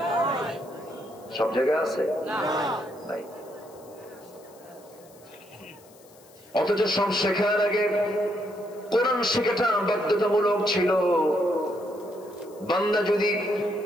সব জায়গায় আছে? নাই। অথচ সব শেখার আগে কোরআন শেখাটা বাধ্যতামূলক ছিল। বান্দা যদি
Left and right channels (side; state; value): left; noise; hiss, 26 dB below the sound